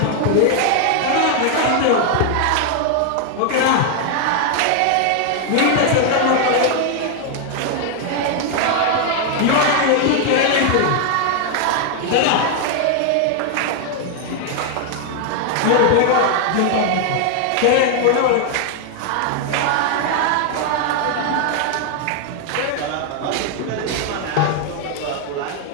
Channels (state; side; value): different; both; correlation 0.00